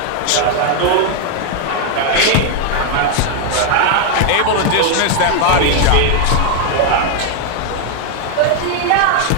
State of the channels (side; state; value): both; different; correlation 0.00